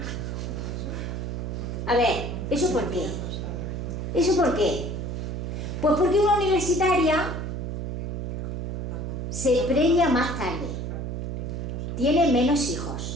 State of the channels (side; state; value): right; noise; hum, 4 dB below the sound